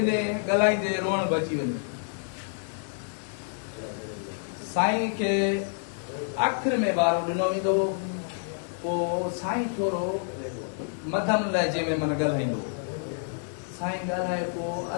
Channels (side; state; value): right; silent; digital silence